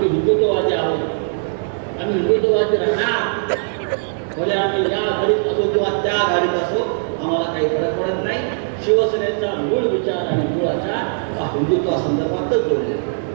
हिंदुत्ववादी आहोत, आम्ही हिंदुत्ववादी राहणार. भले आम्ही या घडीत असो किंवा त्या घडीत असो, आम्हाला काही फरक पडत नाही. शिवसेनेचा मूळ विचार आणि मूळ आचार हा हिंदुत्वासंदर्भातच जोडलेला आहे.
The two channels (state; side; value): silent; left; digital silence